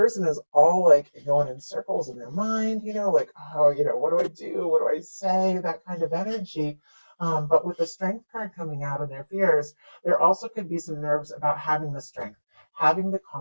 is all like going in circles in their mind, like, oh, what do I do? What do I say? That kind of energy. But with the Strength card coming out of their fears, there also could be some nerves about having the strength, having the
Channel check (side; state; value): both; inverted; correlation -1.00